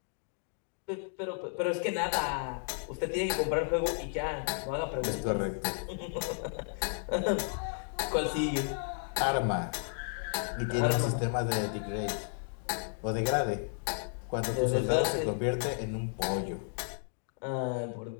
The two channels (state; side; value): silent; right; 56 dB below the other